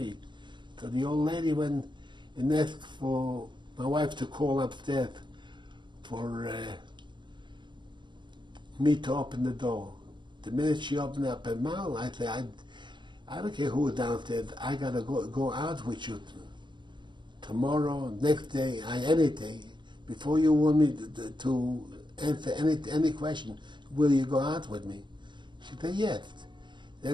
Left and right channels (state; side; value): late; left; 0.23 ms